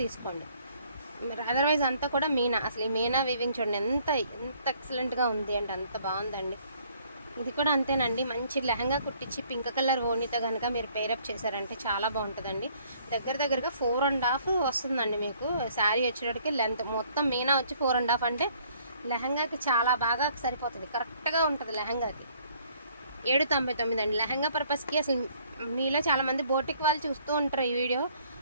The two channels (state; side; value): inverted; both; correlation -0.62